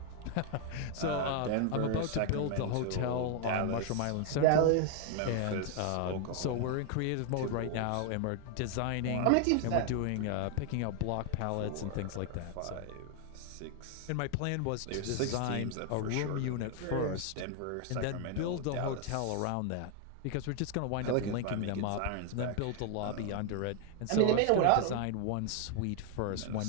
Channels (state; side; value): different; both; correlation 0.00